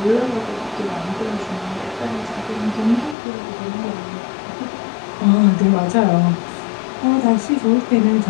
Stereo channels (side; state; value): right; drops out; at 3.2 s